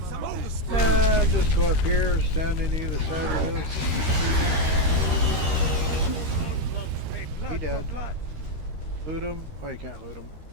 And just go up here, stand on either side of this. He dead. Loot him. Oh, you can't loot him.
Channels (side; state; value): left; late; 13 ms